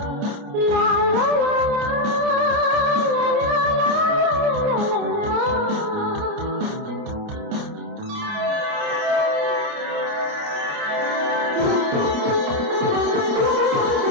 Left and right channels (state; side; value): late; left; 29 ms